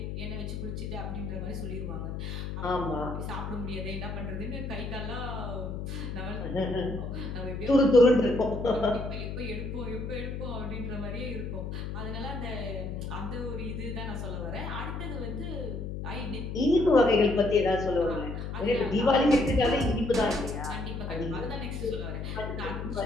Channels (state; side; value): noise; left; hum, 5 dB below the sound